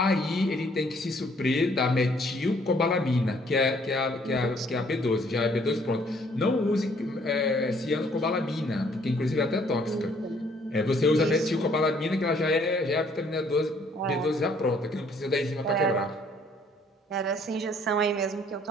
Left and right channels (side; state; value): both; normal; correlation 0.63